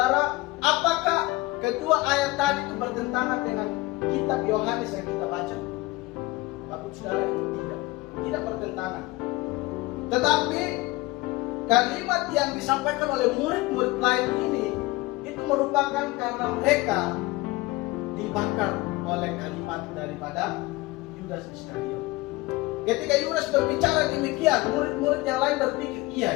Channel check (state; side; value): quieter; right; 20.8 dB